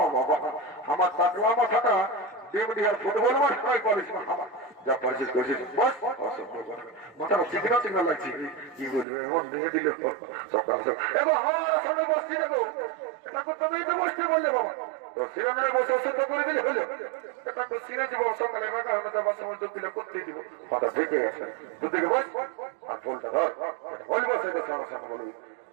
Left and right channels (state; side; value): drops out; left; at 9.1 s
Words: বাবা, আমার টাকলা মাথাটা ডিমডিহার ফুটবল মাঠ নয় করিস না। আমার যা পারছিস করছিস বস, মাথাটা চিকনা চিকনা লাগছে। কি বলবি এমন দিয়ে দিল সকাল এবং আমার সামনে বসছি না গো। এটা তুমি তো বসতে বললে বাবা, তো সিনেমায় বসে অসুস্থ করে দিলে হলো। এটা তো সিনে দিব সকালে বাঁকা হবে, তো বাসা মধ্যে পিলে করতে দিব। মাথা থেকে আছে দুদিকে বস আর ফুলটা ধর বল, বসে সমস্যা বলবি